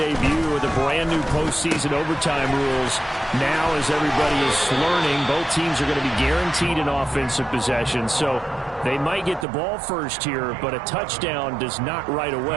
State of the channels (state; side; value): drops out; left; at 9.5 s